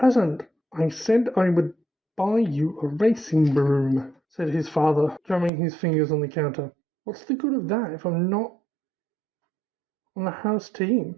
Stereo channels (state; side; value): drops out; left; at 5.5 s